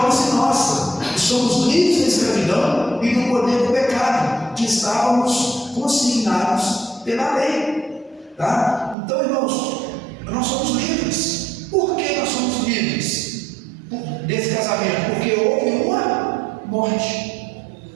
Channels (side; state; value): left; drops out; at 9.0 s